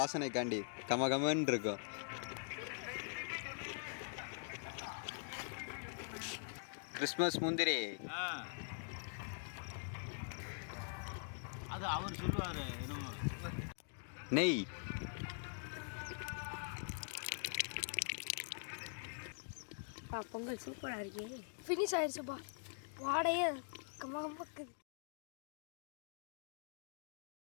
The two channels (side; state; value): right; silent; digital silence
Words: கமகமன்னு இருக்கும். கிறிஸ்மஸ் முந்திரி. அது அவர் சொல்லுவாரு. நெய். பொங்கல் சூப்பரா இருக்கே. ஃபினிஷ் ஆயிடுச்சுப்பா. வாடையே கமகமக்கு.